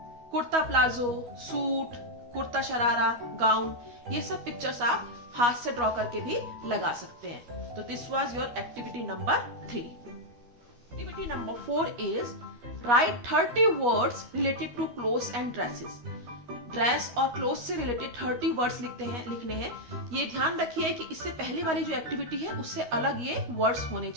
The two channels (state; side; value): late; left; 12 ms